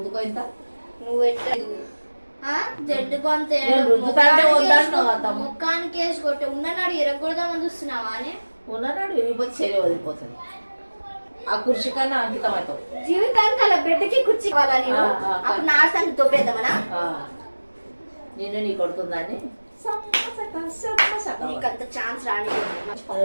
ఇంత. నువ్వు జడ్డు కొంత ముఖానికి వేసి కొట్టి ఉన్ననాడు ఎరగొడదామని చూస్తున్నావా అని. ఉన్ననాడు విరిగిపోతే శరీరం వదిలిపోతుంది. ఆ కుర్చీ కన్నా అంకితం అవుతావు. జీవితానికి అలా బిడ్డకి కుర్చీ కావాలని అప్పుడు నా సంగతి దొబ్బేద్దామనా? నేను నీ కొడుతుందని నీకంత ఛాన్స్ రాని,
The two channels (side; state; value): both; inverted; correlation -1.00